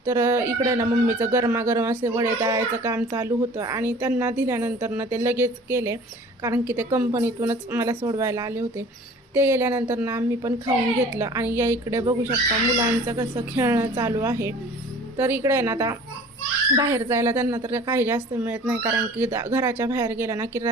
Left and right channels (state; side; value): normal; both; correlation 0.47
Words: तर इकडे ना मम्मीचं गरमागरम असे वडे तळायचं काम चालू होतं आणि त्यांना दिल्यानंतर ना ते लगेच केले, कारण की ते कंपनीतूनच मला सोडवायला आले होते. ते गेल्यानंतर ना आम्ही पण खाऊन घेतलं. आणि या इकडे बघू शकता मुलांचं कसं खेळणं चालू आहे. तर इकडे ना आता बाहेर जायला त्यांना तर काही जास्त मिळत नाही, कारण की घराच्या बाहेर गेला ना की